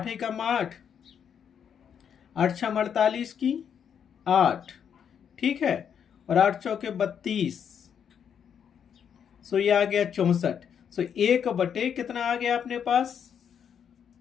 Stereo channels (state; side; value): quieter; right; 8.0 dB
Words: एकम 8, 8 6 48 की 8, ठीक है, और 8 चौके 32, सो ये आ गया 64। सो 1/, कितना आ गया अपने पास?